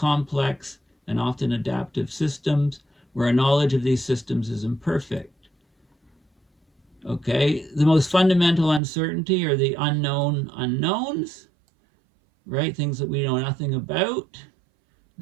and often adaptive systems where our knowledge of these systems is imperfect. Okay, the most fundamental uncertainty are the unknown unknowns, right? Things that we know nothing about.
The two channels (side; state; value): left; drops out; at 8.8 s